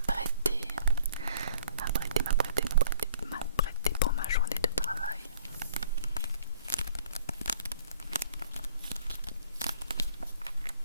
pour ma journée de travail.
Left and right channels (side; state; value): both; inverted; correlation -0.55